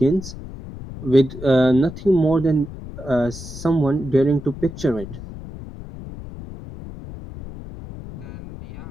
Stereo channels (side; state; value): left; noise; rumble, 13 dB below the sound